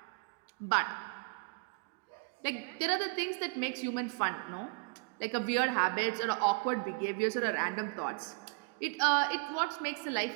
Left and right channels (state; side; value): quieter; left; 32.2 dB